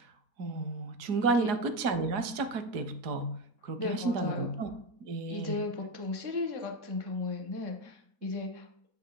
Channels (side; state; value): left; late; 4.1 ms